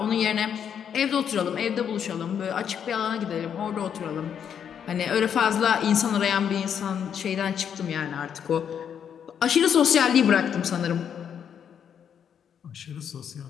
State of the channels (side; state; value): right; quieter; 8.2 dB